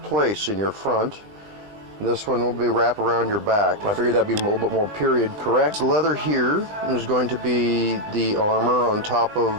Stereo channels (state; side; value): late; left; 19 ms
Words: in your front. This one will be wrapped around your back. I figured that'd be a little bit more period correct. The leather here is going to be the armor on top